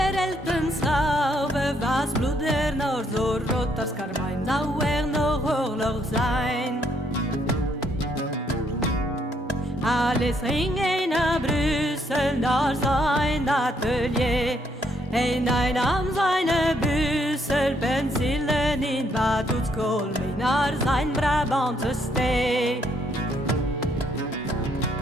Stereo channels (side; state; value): both; normal; correlation 0.72